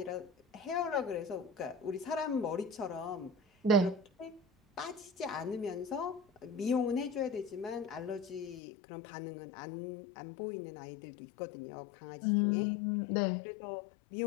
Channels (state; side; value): drops out; right; at 8.6 s